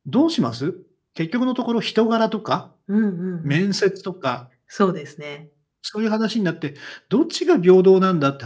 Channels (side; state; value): both; identical; correlation 1.00